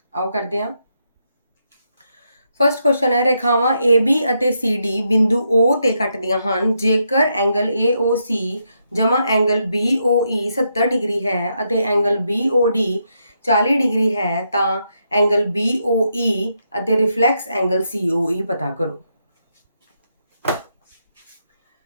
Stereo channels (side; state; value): both; inverted; correlation -0.80